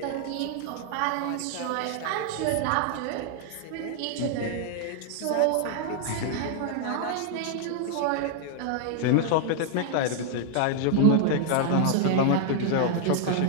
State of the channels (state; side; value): different; both; correlation -0.01